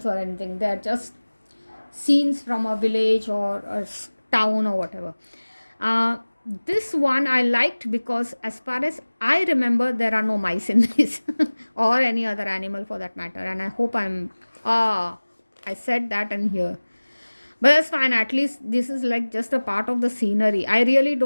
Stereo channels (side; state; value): both; inverted; correlation -1.00